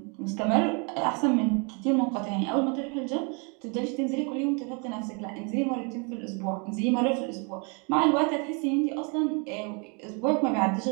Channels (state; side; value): quieter; left; 34.6 dB